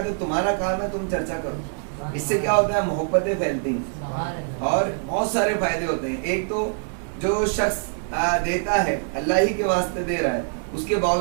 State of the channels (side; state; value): left; silent; digital silence